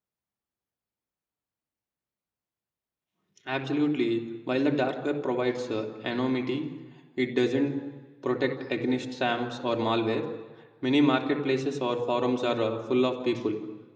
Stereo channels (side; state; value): both; identical; correlation 1.00